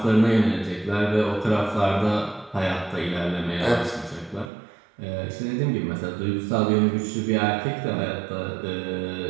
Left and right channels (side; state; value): left; drops out; at 4.5 s